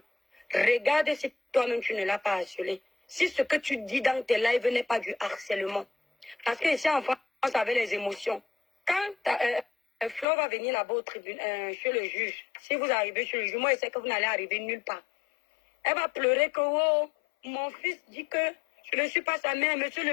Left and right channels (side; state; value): right; drops out; at 10.2 s